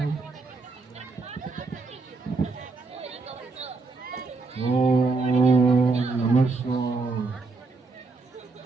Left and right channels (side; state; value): left; quieter; 3.8 dB